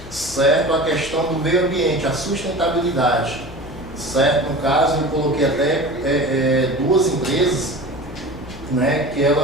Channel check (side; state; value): left; noise; hum, 17 dB below the sound